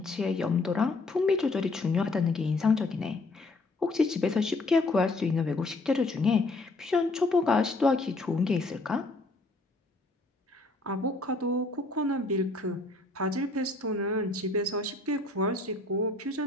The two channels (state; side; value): quieter; right; 3.1 dB